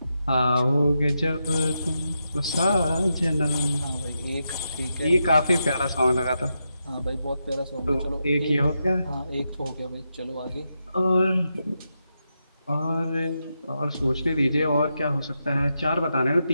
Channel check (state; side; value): inverted; both; correlation -0.86